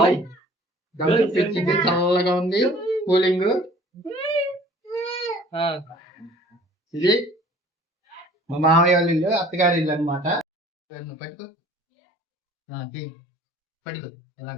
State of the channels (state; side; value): normal; both; correlation 0.51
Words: తెచ్చింది, చల్లగా ఉంది కూలింగ్. ఇది మా మామయ్య వాళ్ళ ఇల్లు, అత్తగారి ఇల్లు అనమాట. పట్టుకో పట్టుకో, ఎలా